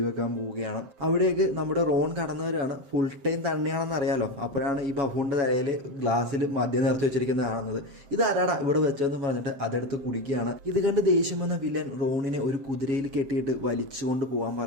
പോവുകയാണ്. അവിടേക്ക് നമ്മുടെ റോൺ കടന്നു വരികയാണ്. ഫുൾ ടൈം തന്നെയാണെന്ന് അറിയാലോ. അപ്പോഴാണ് ഈ ബഫൂണിൻ്റെ തലയിൽ ഗ്ലാസ്സിൽ മദ്യം നിറച്ചു വെച്ചിരിക്കുന്നത് കാണുന്നത്. ഇതാരാടാ ഇവിടെ വെച്ചതെന്ന് പറഞ്ഞിട്ട് അതെടുത്ത് കുടിക്കുകയാണ്. ഇത് കണ്ട് ദേഷ്യം വന്ന വില്ലൻ റോണിനെ ഒരു കുതിരയിൽ കെട്ടിയിട്ട് വലിച്ചുകൊണ്ട് പോകാൻ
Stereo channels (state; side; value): late; left; 7.2 ms